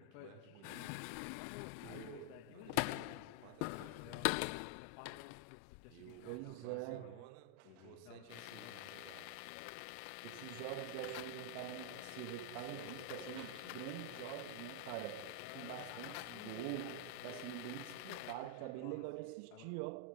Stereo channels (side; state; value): both; different; correlation 0.00